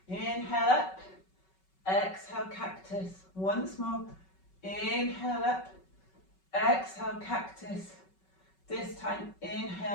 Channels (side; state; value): right; late; 5.3 ms